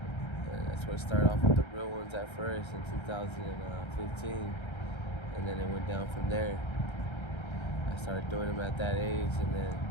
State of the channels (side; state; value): right; late; 1.3 ms